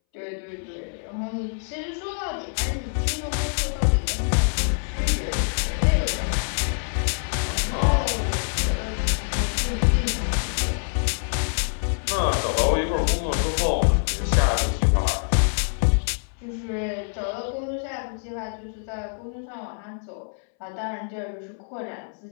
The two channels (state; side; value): silent; right; 62 dB below the other